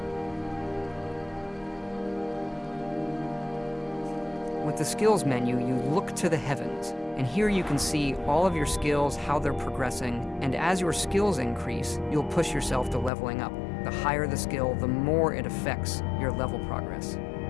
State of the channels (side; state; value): right; drops out; at 13.1 s